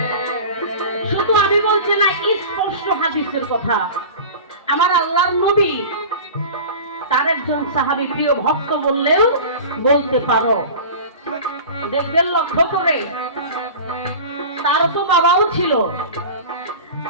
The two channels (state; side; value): inverted; both; correlation -0.35